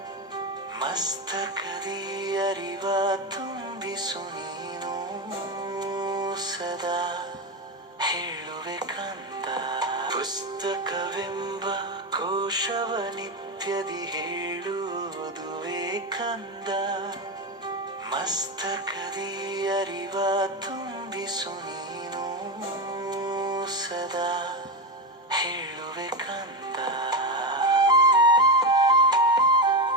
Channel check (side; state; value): both; normal; correlation 0.14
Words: ಮಸ್ತಕದಿ ಅರಿವ ತುಂಬಿಸು ನೀನು ಸದಾ ಹೇಳುವೆ ಕಂದ. ಪುಸ್ತಕವೆಂಬ ಕೋಶವ ನಿತ್ಯದಿ ಹೇಳುವುದುವೇ ಕಂದ. ಮಸ್ತಕದಿ ಅರಿವ ತುಂಬಿಸು ನೀನು ಸದಾ ಹೇಳುವೆ ಕಂದ.